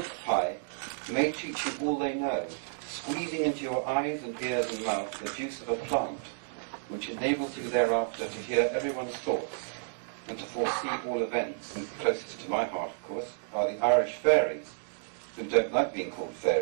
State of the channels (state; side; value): silent; left; digital silence